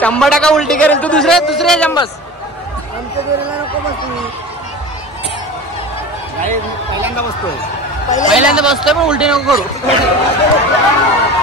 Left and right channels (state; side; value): normal; both; correlation 0.34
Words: उलटी करेल. तू दुसऱ्या जंबस पहिल्यांदा बसतोय पण उलटी नको करू.